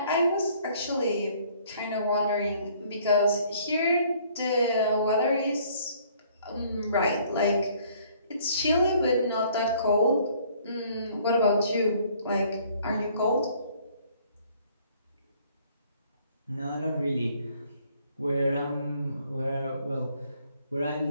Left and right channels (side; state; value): both; inverted; correlation -0.60